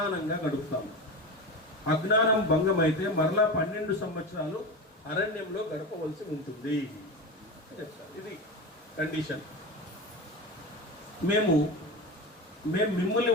గడుపుతాము. అజ్ఞానం భంగమైతే మరలా 12 సంవత్సరాలు అరణ్యంలో గడపవలసి ఉంటుంది. ఇది కండిషన్. మేము మిమ్మల్ని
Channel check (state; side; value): normal; both; correlation 0.24